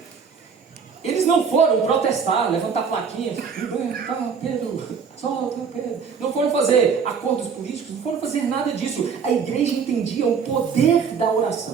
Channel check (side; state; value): left; quieter; 6.2 dB